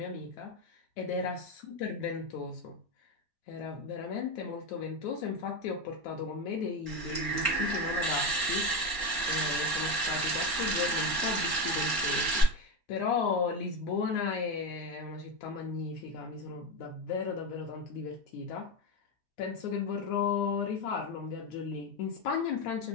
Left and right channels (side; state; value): right; late; 4.3 ms